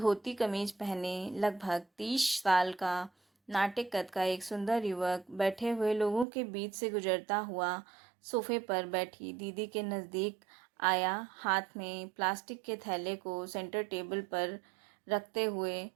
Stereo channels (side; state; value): left; drops out; at 6.2 s